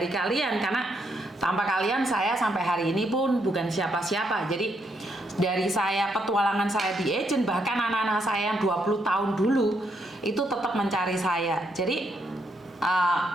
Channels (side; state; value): both; normal; correlation 0.76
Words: kalian, karena tanpa kalian saya sampai hari ini pun bukan siapa-siapa. Jadi dari saya petualangan saya di agent, bahkan anak-anak saya yang 20 tahun dulu itu tetap mencari saya. Jadi